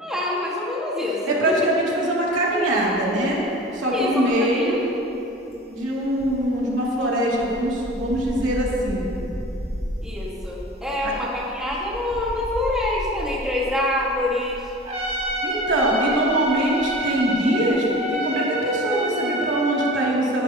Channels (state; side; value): normal; both; correlation 0.38